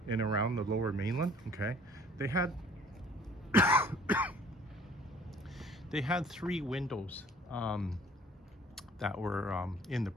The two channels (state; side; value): normal; both; correlation 0.54